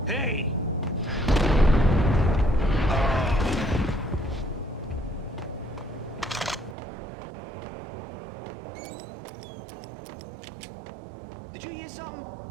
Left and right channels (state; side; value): drops out; left; at 6.8 s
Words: Hey! Did you hear something?